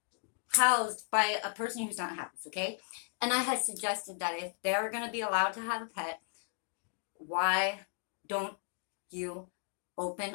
housed by a person who's not housed, okay? And I had suggested that if they're going to be allowed to have a pet, why don't you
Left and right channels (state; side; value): silent; right; 54 dB below the other